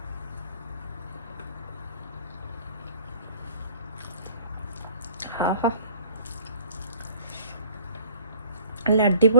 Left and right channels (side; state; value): both; inverted; correlation -0.52